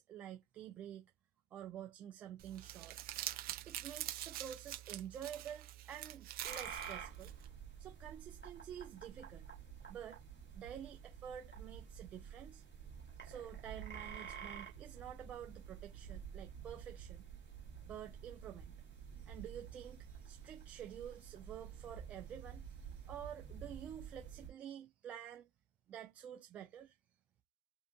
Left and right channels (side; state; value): left; quieter; 9.3 dB